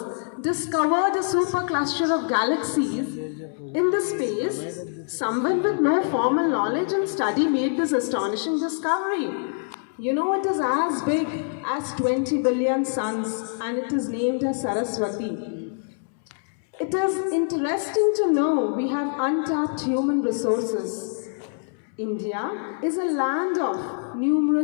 discovered a supercluster of galaxies in the space. Someone with no formal knowledge and study made this astonishing discovery. You know, it is as big as 20 billion suns and it is named as Saraswati. It is interesting to know we have untapped human resources. India is a land of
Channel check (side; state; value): right; silent; 62 dB below the other